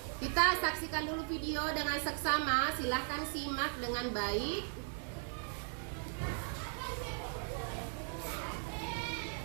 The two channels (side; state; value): left; silent; 53 dB below the other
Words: Kita saksikan dulu video dengan seksama. Silahkan simak dengan baik.